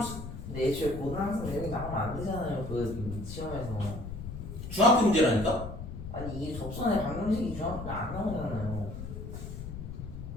근데 애초에 고등학생 여기 나오면 안 되잖아요. 그 시험에서. 중학교 문제라니까? 아니 이게 접선의 방정식이 중학교에 안 나오잖아요.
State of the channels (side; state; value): left; noise; rumble, 8 dB below the sound